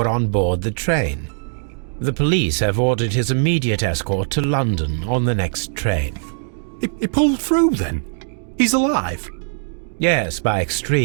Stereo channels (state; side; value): silent; left; 63 dB below the other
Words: on board the train? The police have ordered his immediate escort to London on the next train. He pulled through, then? He's alive? Yes, by